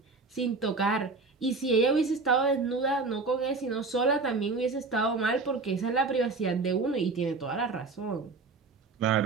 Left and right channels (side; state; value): left; quieter; 4.0 dB